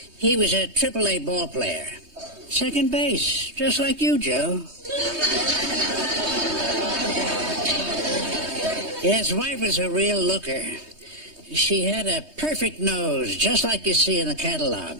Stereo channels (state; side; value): late; left; 3.2 ms